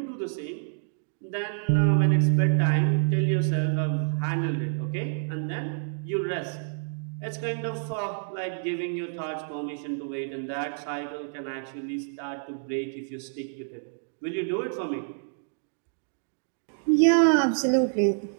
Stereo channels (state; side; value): silent; left; digital silence